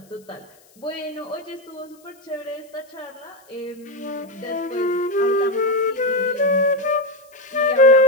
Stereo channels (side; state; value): left; noise; hiss, 30 dB below the sound